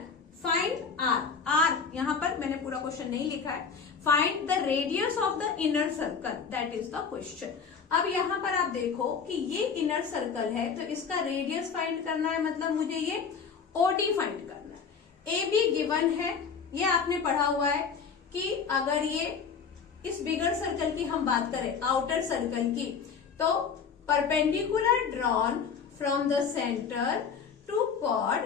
फाइंड आर। आर यहाँ पर मैंने पूरा क्वेश्चन नहीं लिखा है। Find the radius of the inner circle, that is the question. अब यहाँ पर आप देखो कि ये इनर सर्कल है, तो इसका रेडियस फाइंड करना है, मतलब मुझे ये ओडी फाइंड करना है। ए बी गिवन है, ये आपने पढ़ा हुआ है कि अगर ये इस बिगर सर्कल की हम बात करें, आउटर सर्कल की, तो perpendicular drawn from the centre to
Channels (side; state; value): right; quieter; 6.1 dB